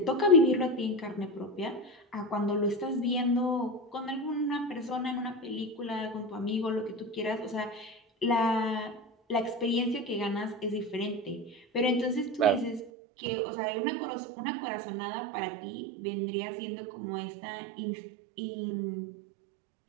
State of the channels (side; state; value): left; drops out; at 12.9 s